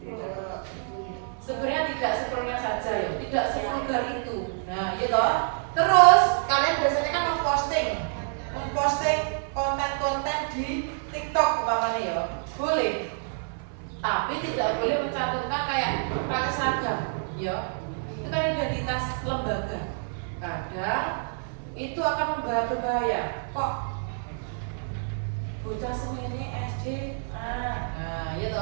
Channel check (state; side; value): silent; left; 59 dB below the other